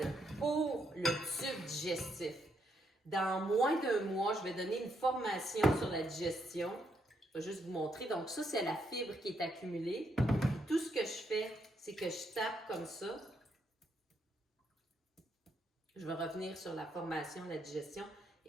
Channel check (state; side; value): normal; both; correlation 0.77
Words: pour le tube digestif. Dans moins d'1 mois, je vais donner une formation sur la digestion. Je vais juste vous montrer. Donc ça, c'est la fibre qui est accumulée. Tout ce que je fais, c'est que je tape comme ça. Je vais revenir sur la formation, la digestion.